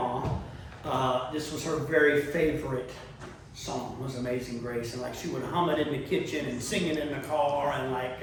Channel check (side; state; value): both; identical; correlation 1.00